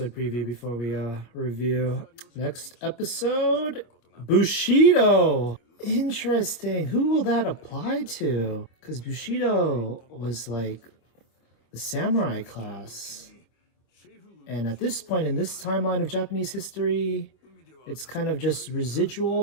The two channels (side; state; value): right; late; 25 ms